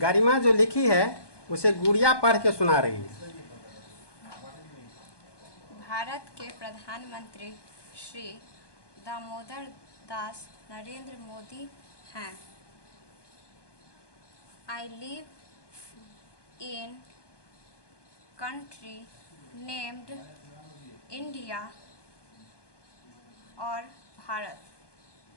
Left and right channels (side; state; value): right; late; 1.2 ms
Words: जो लिखी है उसे गुड़िया पढ़ के सुना रही है। भारत के प्रधानमंत्री श्री दामोदर दास नरेंद्र मोदी हैं। I live in country named India और भारत।